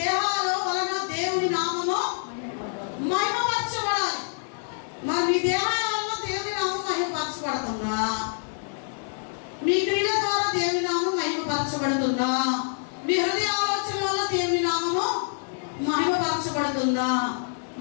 వలన దేవుని నామము మహిమపరచబడాలి. మరి మీ దేహాల వలన దేవుని నామం మహిమపరచబడుతుందా? మీ క్రియల ద్వారా దేవుని నామం మహిమపరచబడుతుందా? మీ హృదయ ఆలోచన వల్ల దేవుని నామము మహిమపరచబడుతుందా?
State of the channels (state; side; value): silent; right; digital silence